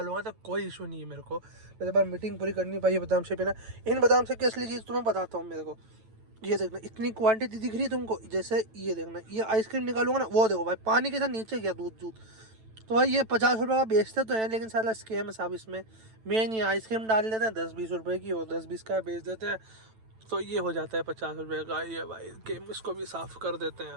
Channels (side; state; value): left; late; 9.1 ms